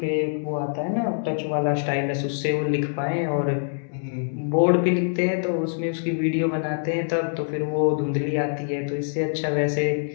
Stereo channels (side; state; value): right; silent; digital silence